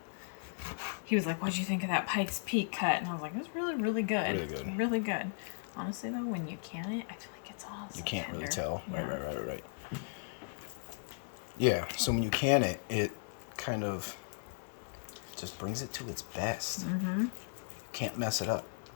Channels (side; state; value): right; silent; 54 dB below the other